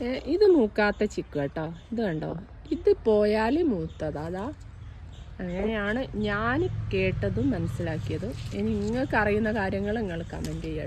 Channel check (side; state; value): both; identical; correlation 1.00